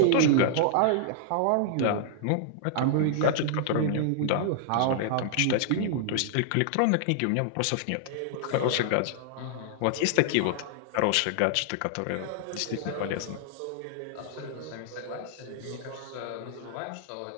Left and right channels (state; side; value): different; both; correlation -0.01